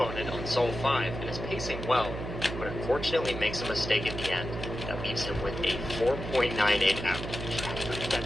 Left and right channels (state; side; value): noise; right; hum, 7 dB below the sound